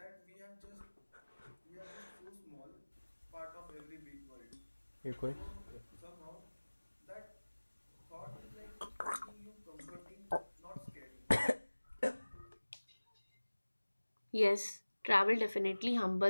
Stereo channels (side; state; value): both; inverted; correlation -1.00